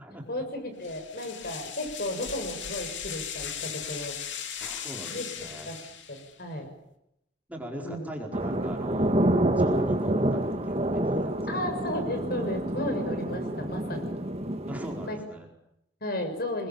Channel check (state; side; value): normal; both; correlation 0.46